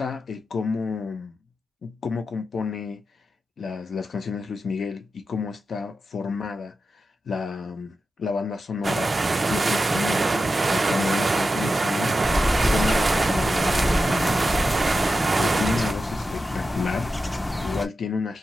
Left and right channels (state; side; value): normal; both; correlation 0.90